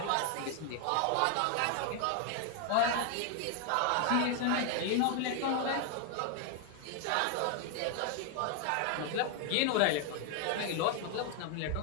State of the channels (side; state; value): both; different; correlation 0.00